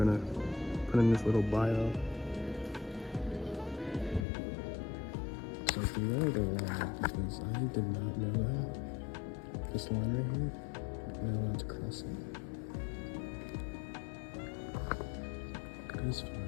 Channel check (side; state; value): right; drops out; at 4.2 s